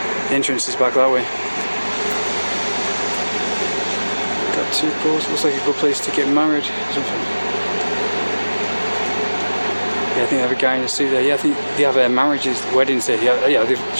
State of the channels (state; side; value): inverted; both; correlation -1.00